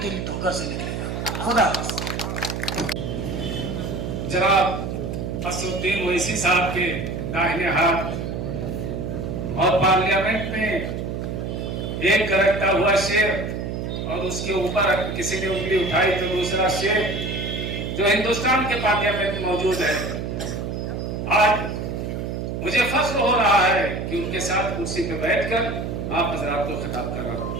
ठोकर से निकलेगा। खुदा जनाब असदुद्दीन ओवैसी साहब के दाहिने हाथ और पार्लियामेंट में एक करकता हुआ शेर और उसके ऊपर किसी ने उंगली उठाई तो दूसरा शेख जो हिंदुस्तान के पार्लियामेंट में मौजूद है, आज मुझे फख्र हो रहा है कि उनके साथ कुर्सी पे बैठकर आप हजरात को खिताब कर रहा हूं।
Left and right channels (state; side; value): noise; right; hum, 4 dB below the sound